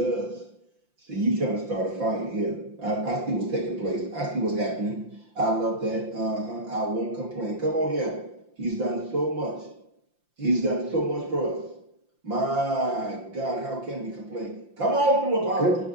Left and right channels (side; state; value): left; late; 5.8 ms